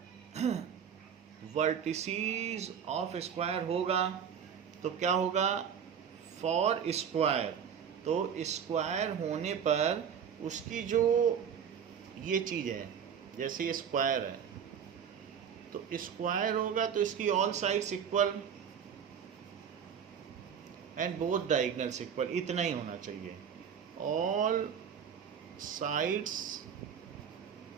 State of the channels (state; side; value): quieter; left; 7.8 dB